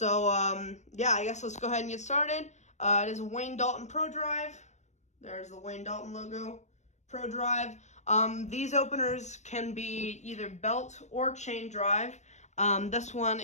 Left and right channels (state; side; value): late; right; 0.34 ms